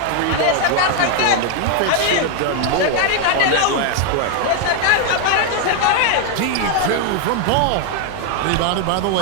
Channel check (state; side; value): different; both; correlation 0.00